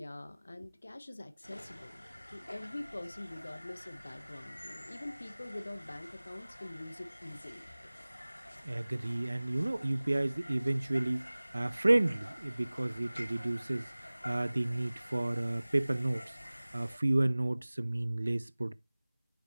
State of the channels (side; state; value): both; inverted; correlation -1.00